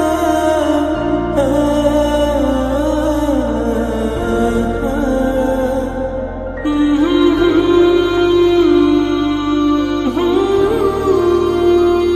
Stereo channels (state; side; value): identical; both; correlation 1.00